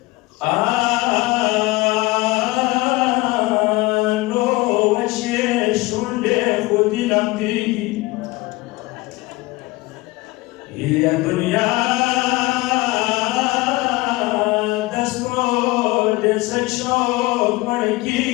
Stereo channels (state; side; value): quieter; right; 21.5 dB